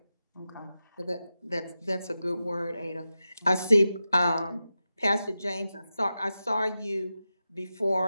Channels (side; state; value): both; inverted; correlation -0.92